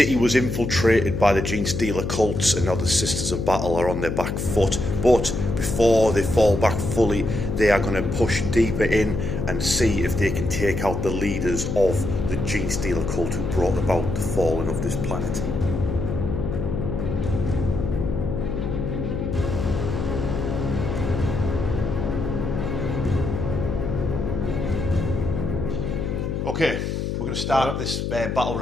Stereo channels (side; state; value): left; noise; hum, 2 dB below the sound